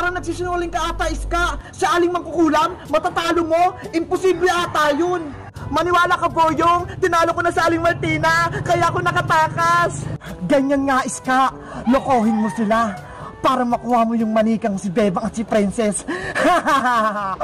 nagsisinungaling ka ata, Iska. Si Aling Mangkukulam, matatalo mo? Imposible ata yun. Maniwala ka, Boyong! Tinalo ko na sa Aling Martina, kaya ako nakatakas! Ganyan nga, Iska! Lokohin mo sila para makuha mo yung manikang si Bebang at si Princess!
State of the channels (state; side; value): identical; both; correlation 1.00